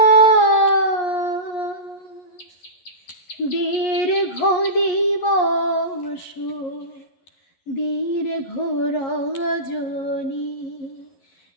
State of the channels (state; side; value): late; right; 11 ms